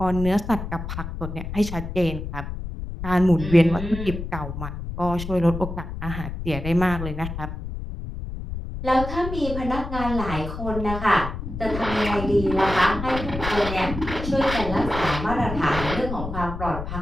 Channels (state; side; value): noise; left; rumble, 7 dB below the sound